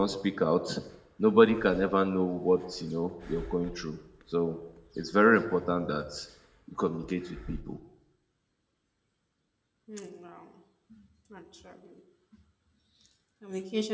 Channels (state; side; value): identical; both; correlation 1.00